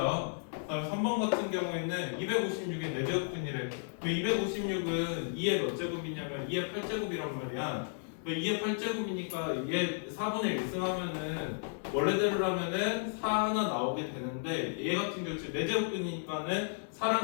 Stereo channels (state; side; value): silent; right; 55 dB below the other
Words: 그 다음에 3번 같은 경우에는 256의 4제곱근이래. 256은 2의 몇 제곱이냐면 2의 8제곱이란 말이야. 2의 8제곱이니까 얘 4분의 1승 하면은 원래대로 하면은 4 하나 나오게 되는데 얘 같은 경우 4제곱근이니까는